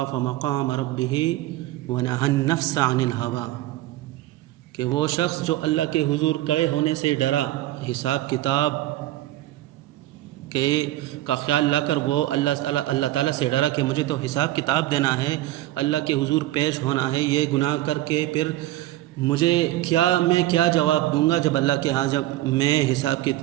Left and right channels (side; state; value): left; quieter; 15.6 dB